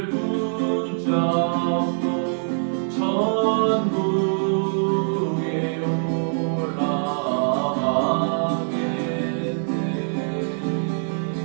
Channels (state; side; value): silent; left; 60 dB below the other